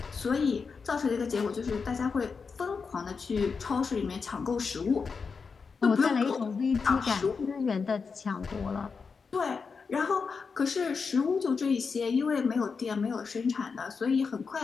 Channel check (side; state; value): right; quieter; 5.2 dB